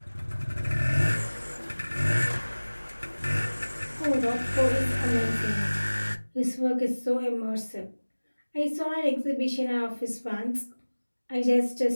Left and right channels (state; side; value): inverted; both; correlation -1.00